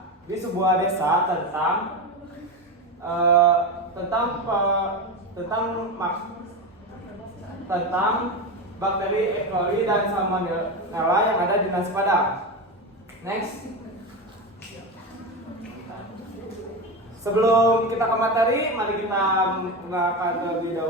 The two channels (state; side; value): normal; both; correlation 0.19